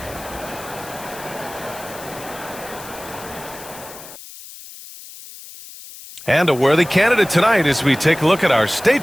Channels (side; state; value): left; noise; hiss, 16 dB below the sound